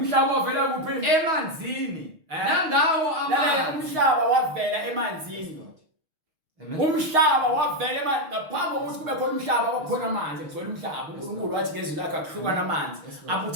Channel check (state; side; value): late; left; 6.4 ms